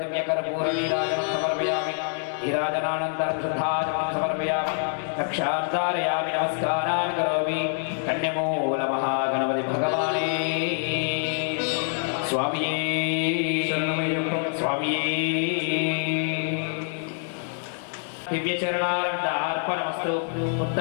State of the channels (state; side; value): silent; right; 61 dB below the other